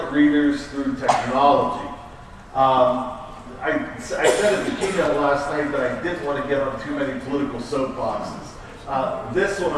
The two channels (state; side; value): identical; both; correlation 1.00